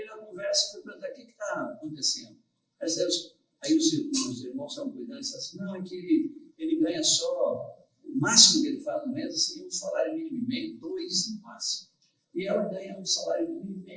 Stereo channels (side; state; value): both; identical; correlation 1.00